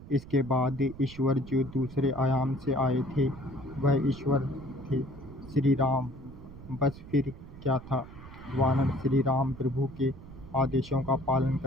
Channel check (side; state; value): right; noise; rumble, 16 dB below the sound